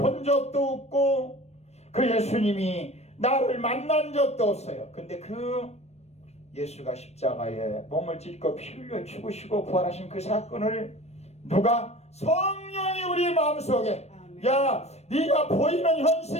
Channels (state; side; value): late; right; 0.31 ms